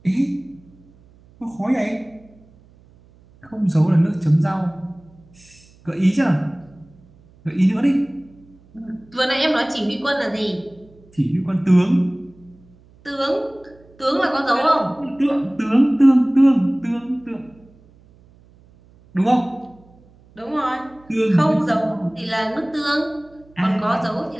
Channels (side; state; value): right; noise; hum, 28 dB below the sound